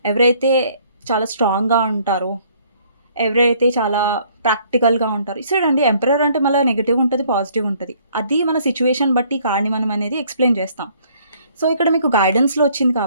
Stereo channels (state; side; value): inverted; both; correlation -0.61